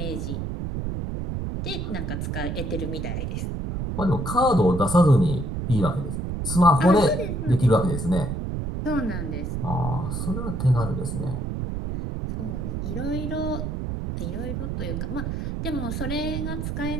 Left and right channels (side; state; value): right; noise; rumble, 3 dB below the sound